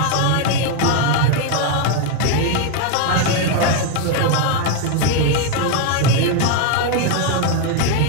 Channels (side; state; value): both; different; correlation 0.01